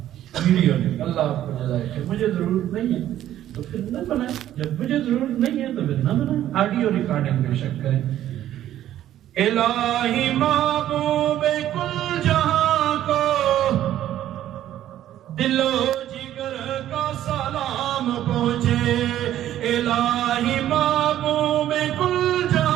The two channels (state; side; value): quieter; left; 12.3 dB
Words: ویڈیو نہیں، اللہ آپ کو جزائے خیر، مجھے ضرورت نہیں ہے تو پھر نہ بنائیں، جب مجھے ضرورت نہیں ہے تو پھر نہ بنائیں، آڈیو ریکارڈنگ بے شک کریں۔ الہی محبوب کل جہاں کو دل و جگر کا سلام پہنچے، الہی محبوب کل